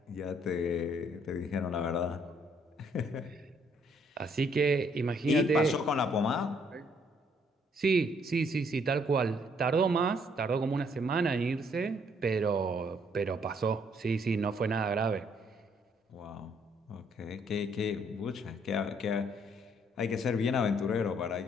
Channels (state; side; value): normal; both; correlation 0.67